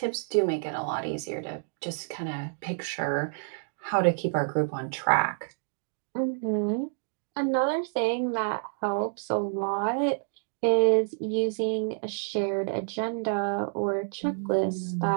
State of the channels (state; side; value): silent; left; digital silence